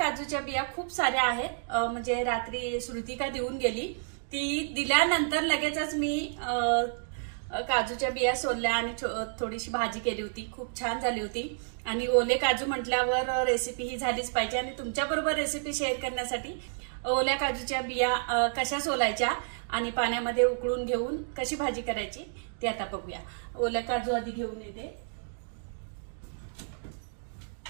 बिया खूप साऱ्या आहेत। म्हणजे रात्री श्रुतिका देऊन गेली, ती दिल्यानंतर लगेचच मी काजूच्या बिया सोलल्या आणि थोडीशी भाजी केली होती। खूप छान झाली होती आणि ओले काजू म्हटल्यावर रेसिपी ही झालीच पाहिजे आणि तुमच्याबरोबर रेसिपी शेअर करण्यासाठी ओल्या काजूच्या बिया कशा सोलायच्या आणि पाण्यामध्ये उकळून घेऊन कशी भाजी करायची ते आता बघूया। ओल्या काजू आधी घेऊन येते।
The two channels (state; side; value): silent; left; digital silence